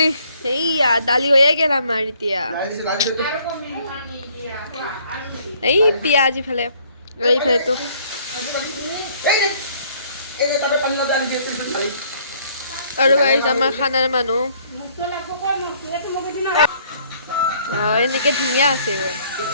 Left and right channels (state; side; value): inverted; both; correlation -0.62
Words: এইয়া দালি হৈয়ে গেল আমাৰ এতিয়া এই পিঁয়াজ ইফালে এইফালেতো আৰু গাইছ আমাৰ খানাৰ মানুহ এনেকে ধুনীয়া আছে